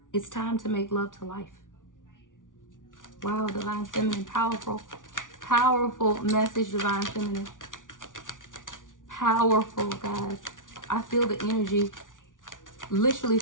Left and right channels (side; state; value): right; late; 0.88 ms